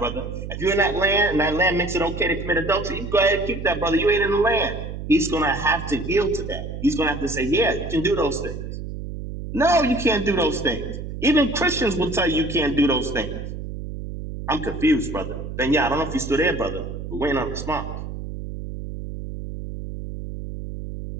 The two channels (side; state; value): right; noise; hum, 8 dB below the sound